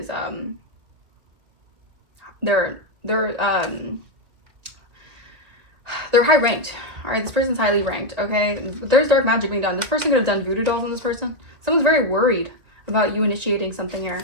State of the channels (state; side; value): late; left; 1.9 ms